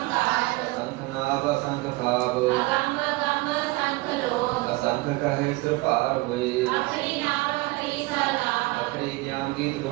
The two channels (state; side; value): quieter; left; 22.0 dB